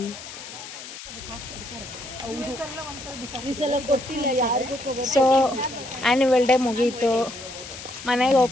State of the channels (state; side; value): noise; left; hiss, 13 dB below the sound